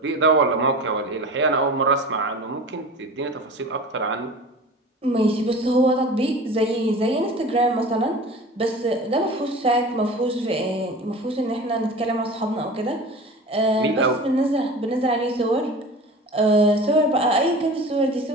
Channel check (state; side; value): normal; both; correlation 0.37